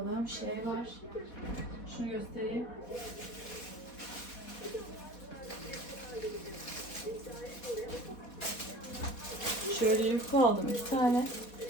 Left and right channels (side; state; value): right; late; 4.2 ms